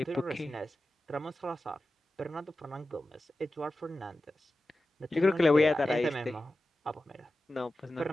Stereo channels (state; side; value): normal; both; correlation 0.94